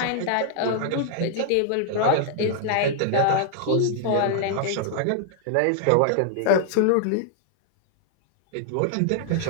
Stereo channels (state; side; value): different; both; correlation -0.01